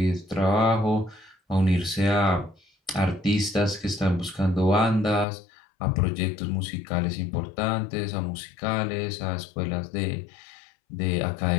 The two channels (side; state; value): right; drops out; at 5.2 s